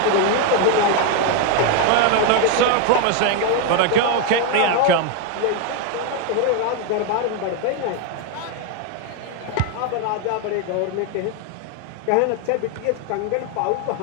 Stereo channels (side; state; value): both; different; correlation 0.01